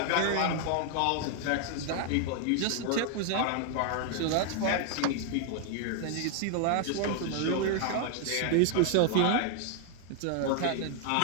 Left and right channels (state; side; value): different; both; correlation 0.00